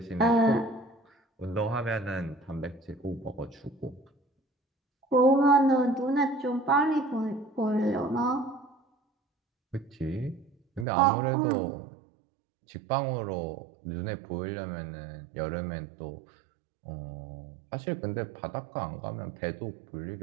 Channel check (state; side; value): drops out; left; at 10.9 s